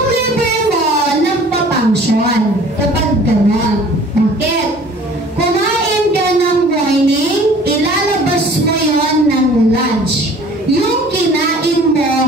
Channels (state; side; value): normal; both; correlation 0.50